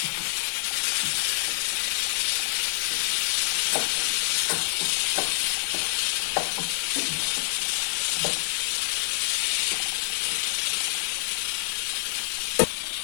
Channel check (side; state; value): right; silent; digital silence